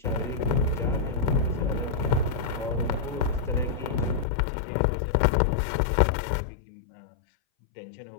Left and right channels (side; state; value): right; drops out; at 4.2 s